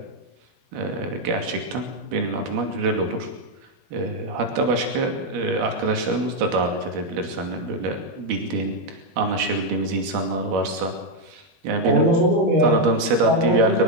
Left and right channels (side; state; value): left; late; 12 ms